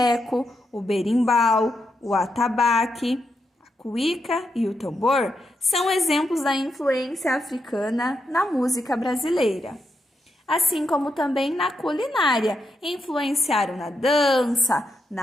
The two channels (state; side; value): normal; both; correlation 0.83